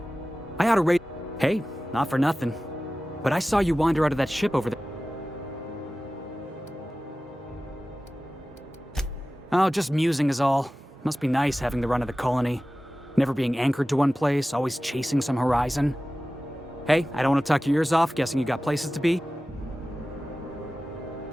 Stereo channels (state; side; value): normal; both; correlation 0.96